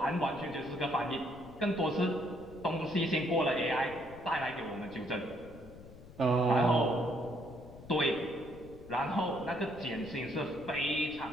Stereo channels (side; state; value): left; noise; rumble, 18 dB below the sound